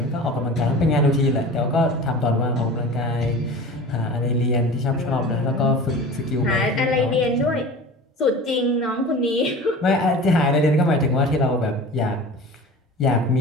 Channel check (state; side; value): normal; both; correlation 0.37